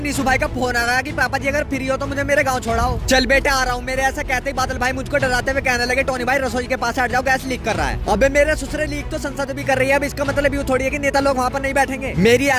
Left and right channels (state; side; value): identical; both; correlation 1.00